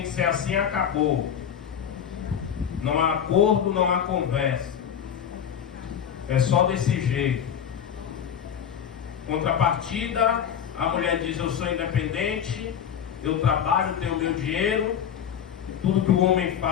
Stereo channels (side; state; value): right; quieter; 8.6 dB